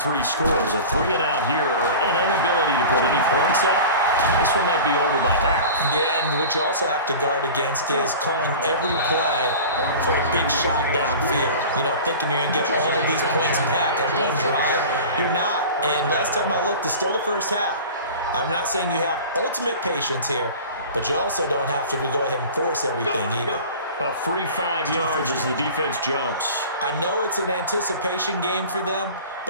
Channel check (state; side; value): inverted; both; correlation -0.37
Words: scores. A 3-and-out here, or an inability to put any points up. This one might be over by half. Yeah, and what you also have to guard against is calling every play for a big shot downfield. You know, thinking you're going to get all of these points back on one drive. You're not. And last time I looked, it's still the first half. I'm not saying you have ultimate patience here, but you also don't have to go ahead and force everything either. A free 5 yards as the defense jumps. I know it's an anticipation game for them,